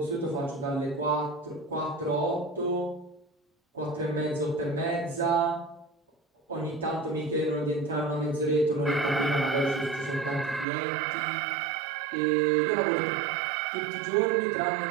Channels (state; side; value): drops out; left; at 10.7 s